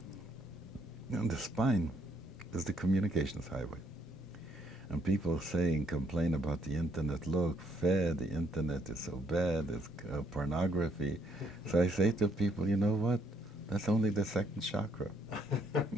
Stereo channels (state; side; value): normal; both; correlation 0.69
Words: and the spine is the communications highway. And people complain about the internet. Look, the internet is so bad, it's pornography. So I say to people, you know what? That's only the second chakra